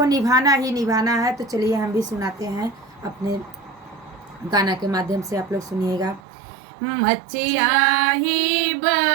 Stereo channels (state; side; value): drops out; left; at 6.2 s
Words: निभाना ही निभाना है। तो चलिए हम भी सुनाते हैं अपने गाना के माध्यम से। आप लोग सुनिएगा। मचिया ही